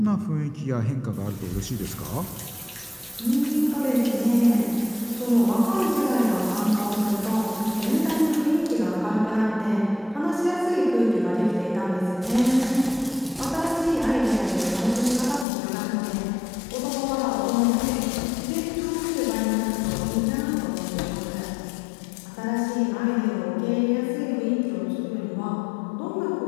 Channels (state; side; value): drops out; right; at 15.5 s